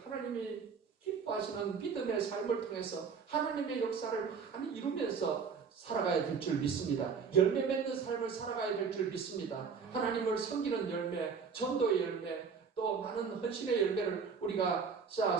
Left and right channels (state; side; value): quieter; left; 5.9 dB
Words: 하나님이 기뻐하시는 믿음의 삶을 통해서 하나님의 역사를 많이 이루면서 살아가야 될 줄 믿습니다. 열매 맺는 삶을 살아가야 될 줄 믿습니다. 하나님을 섬기는 열매, 전도의 열매, 또 많은 헌신의 열매를 우리가